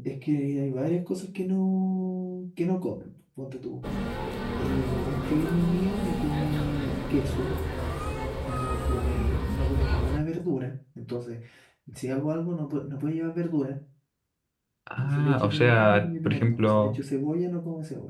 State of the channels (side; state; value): both; identical; correlation 1.00